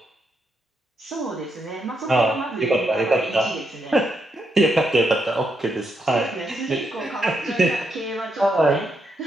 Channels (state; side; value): normal; both; correlation 0.80